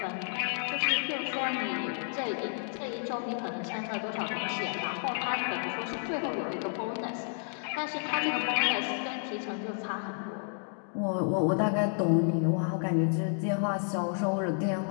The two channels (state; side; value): silent; right; 57 dB below the other